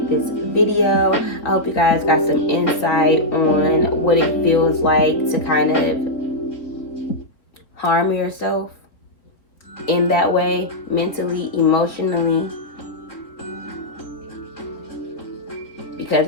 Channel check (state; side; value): late; right; 3.8 ms